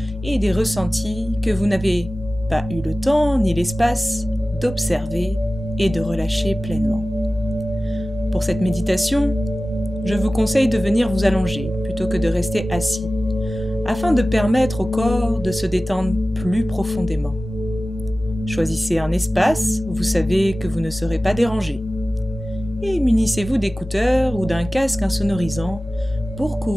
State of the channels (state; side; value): normal; both; correlation 0.96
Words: et des ressentis que vous n'avez pas eu le temps ni l'espace d'observer et de relâcher pleinement. Pour cette méditation, je vous conseille de venir vous allonger plutôt que de rester assis, afin de permettre au corps de se détendre plus profondément. Choisissez un espace où vous savez que vous ne serez pas dérangé, et munissez-vous d'écouteurs ou d'un casque insonorisant pour